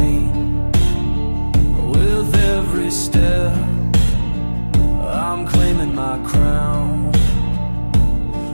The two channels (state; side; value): inverted; both; correlation -1.00